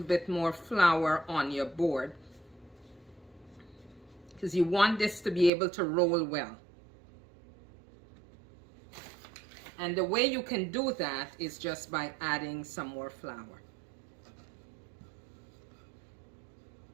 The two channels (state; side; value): drops out; left; at 5.5 s